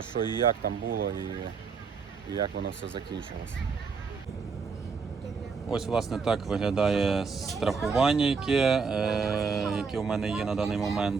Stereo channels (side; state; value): left; quieter; 5.3 dB